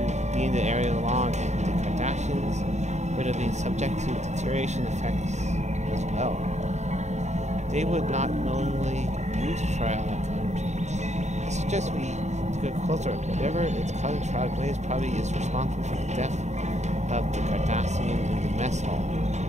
be in the area long, and the Cardassians would have been subject to deterioration effects as well. They would not knowingly use Trog energy. I suggest we take a closer look. Whatever it's causing Trog waves probably is responsible for the death of the Cardassian in the mess hall.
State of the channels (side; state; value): left; late; 0.33 ms